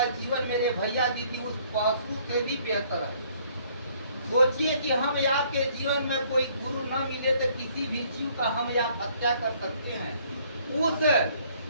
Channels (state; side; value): inverted; both; correlation -0.62